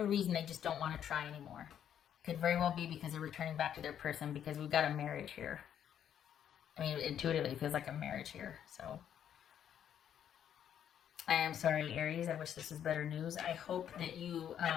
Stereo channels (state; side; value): quieter; right; 9.5 dB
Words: reason, they just don't want to try anymore. Could very well be because they're returning back to their person, because we've got a marriage here. I mean, intuitively, it feels like a marriage here. So, I am sorry, Aries. I wish this was better news. I hope that you,